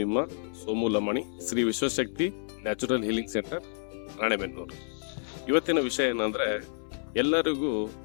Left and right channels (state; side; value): silent; right; 58 dB below the other